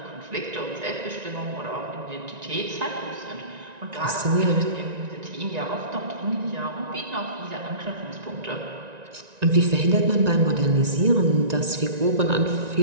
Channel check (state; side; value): late; left; 1.9 ms